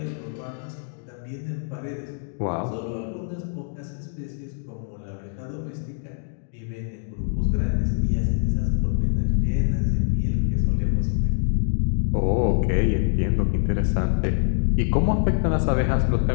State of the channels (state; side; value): silent; right; digital silence